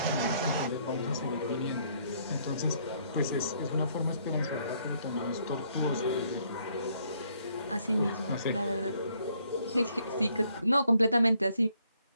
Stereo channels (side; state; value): both; inverted; correlation -0.68